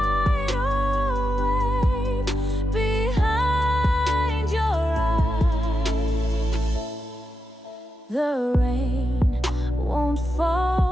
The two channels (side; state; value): both; normal; correlation 0.87